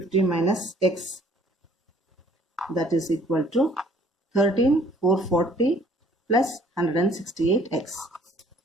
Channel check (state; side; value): normal; both; correlation 0.58